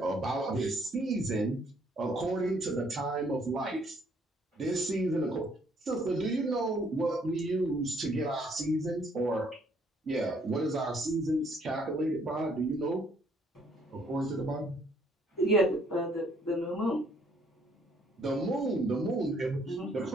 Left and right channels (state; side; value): normal; both; correlation 0.65